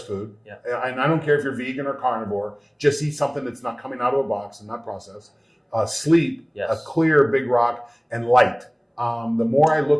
food. Yeah. And I don't care if you're vegan or carnivore, just eat something that's not coming out of a box and not processed. Sleep, yes. A clear big rock, and light. The more I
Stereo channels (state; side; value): identical; both; correlation 1.00